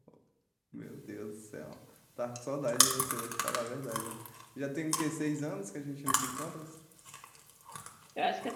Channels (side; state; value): both; identical; correlation 1.00